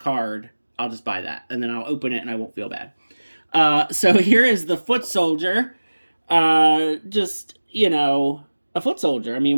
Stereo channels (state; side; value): inverted; both; correlation -1.00